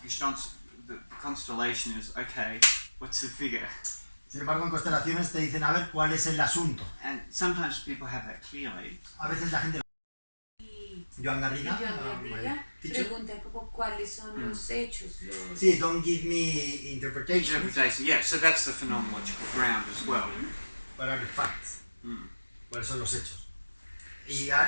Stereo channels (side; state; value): both; inverted; correlation -1.00